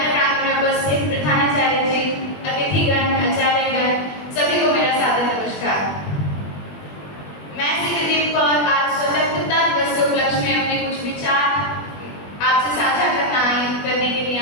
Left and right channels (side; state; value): right; late; 21 ms